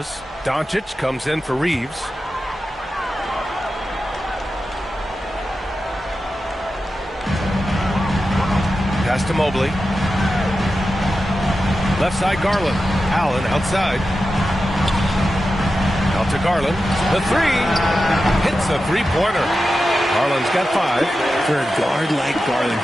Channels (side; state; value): both; normal; correlation 0.91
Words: Doncic comes in for Reeves. Pass to Mobley. Left side, Garland. Allen outside. Out to Garland. The three. Hits a three-pointer. Garland's got 5. For a guard like Garland,